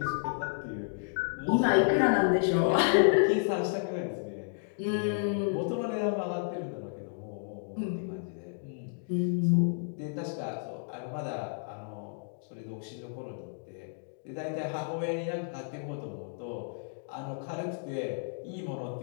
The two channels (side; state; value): right; silent; digital silence